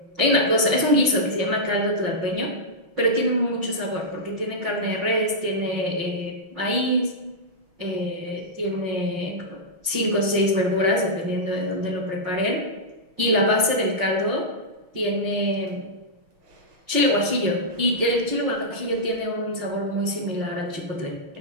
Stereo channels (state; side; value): late; left; 6.2 ms